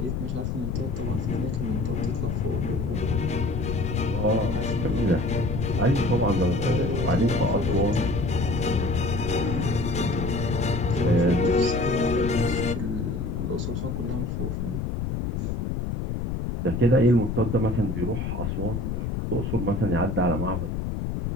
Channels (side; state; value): left; noise; rumble, 2 dB below the sound